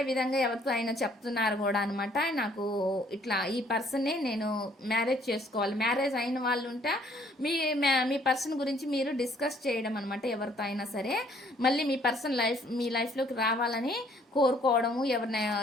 విధంగా ఎవరితో అయినా చెప్తున్నారు కూడా అనమాట. నాకు ఇట్లా ఈ పర్సన్నే నేను మ్యారేజ్ చేసుకోవాలి. మ్యారేజ్ అయిన వాళ్ళు ఉంటే మీ పర్సన్ గురించి మీరు డిస్కస్ చేయడం అనమాట. ఎవరితో అయినా సరే మళ్ళీ మీ లైఫ్లోకి రావాలని కోరుకోవడము,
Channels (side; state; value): both; normal; correlation 0.62